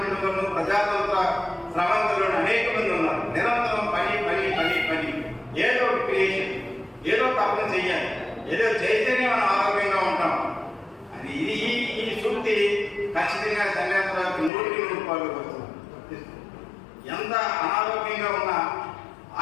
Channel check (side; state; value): right; drops out; at 14.5 s